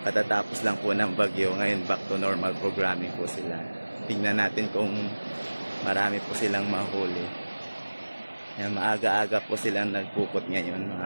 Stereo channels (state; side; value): inverted; both; correlation -1.00